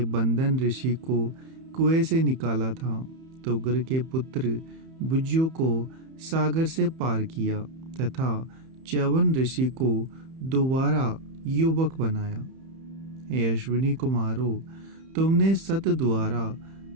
बंदन ऋषि को कुएं से निकाला था। तुगर के पुत्र बुज्जु को सागर से पार किया तथा च्यवन ऋषि को दोबारा युवक बनाया। हे अश्विनी कुमारों, तुमने सत द्वारा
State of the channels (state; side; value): late; left; 31 ms